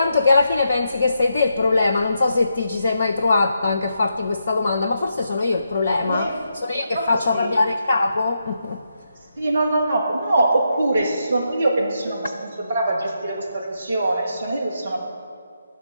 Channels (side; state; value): both; inverted; correlation -0.83